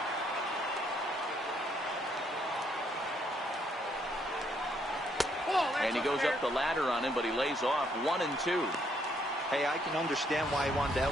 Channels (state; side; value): normal; both; correlation 0.71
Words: And he goes up the ladder on him, but he lays off 1-2. Hey, I can understand why he wanted to